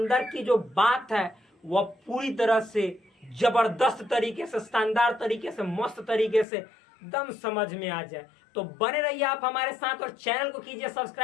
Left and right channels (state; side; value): drops out; right; at 6.5 s